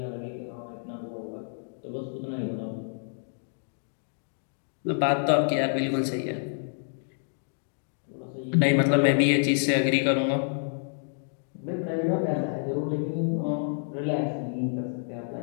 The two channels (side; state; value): right; silent; digital silence